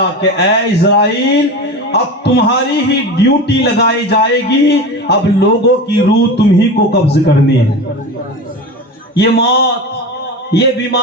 کہ اے اسرائیل اب تمہاری ہی ڈیوٹی لگائی جائے گی، اب لوگوں کی روح تمہیں کو قبض کرنی ہے۔ یہ موت، یہ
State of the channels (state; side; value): normal; both; correlation 0.28